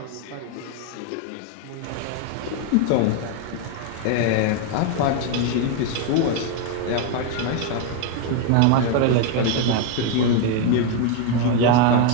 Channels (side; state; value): both; different; correlation 0.01